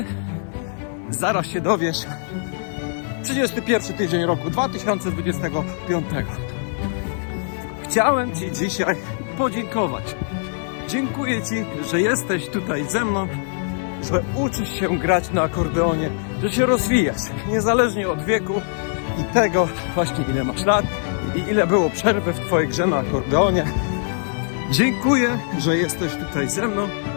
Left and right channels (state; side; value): silent; right; 64 dB below the other